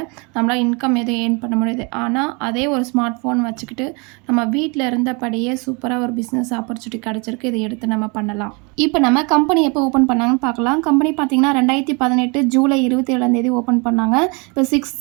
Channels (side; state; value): left; quieter; 30.9 dB